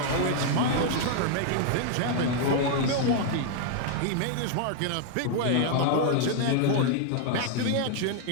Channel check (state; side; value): different; both; correlation 0.00